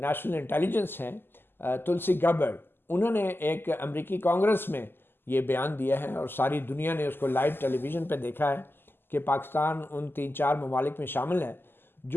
نیشنل انٹیلیجنس ہیں تلسی گبرڈ, انہوں نے ایک امریکی کانگریس میں یہ بیان دیا ہے, اور ساری دنیا نے اس کو لائیو ٹیلی ویژن پہ دیکھا ہے کہ پاکستان ان 3-4 ممالک میں شامل ہے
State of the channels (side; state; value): right; late; 0.10 ms